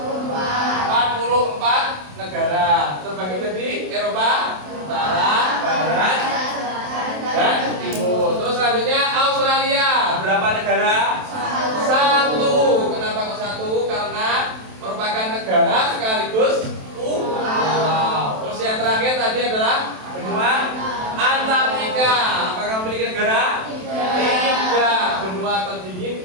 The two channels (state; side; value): late; left; 27 ms